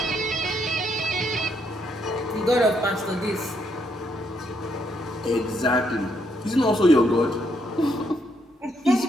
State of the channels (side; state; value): both; normal; correlation 0.74